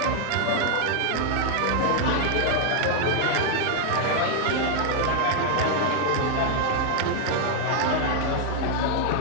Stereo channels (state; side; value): different; both; correlation 0.00